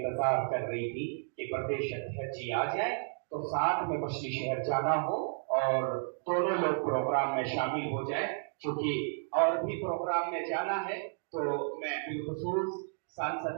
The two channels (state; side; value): silent; left; digital silence